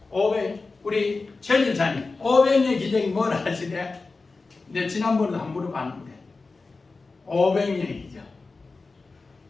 우리 최 집사님 오병이의 기적이 뭐라 하시대? 근데 지난번에도 한 물어봤는데 오병이의 기적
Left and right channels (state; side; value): quieter; right; 3.9 dB